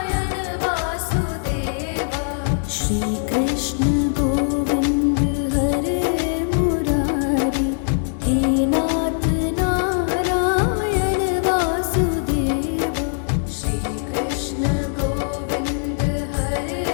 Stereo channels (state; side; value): silent; right; digital silence